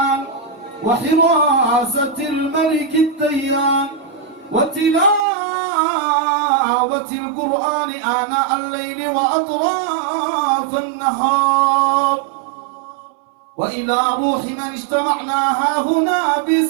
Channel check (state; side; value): drops out; left; at 5.2 s